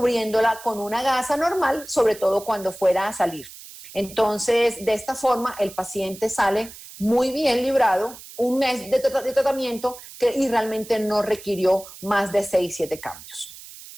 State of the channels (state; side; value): noise; right; hiss, 16 dB below the sound